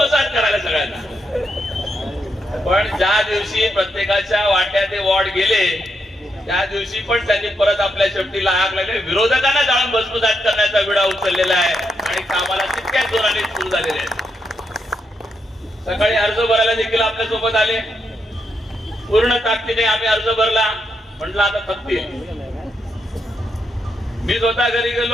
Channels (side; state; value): both; normal; correlation 0.81